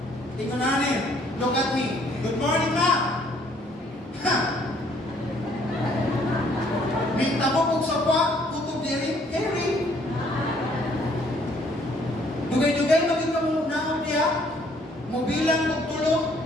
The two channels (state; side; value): normal; both; correlation 0.63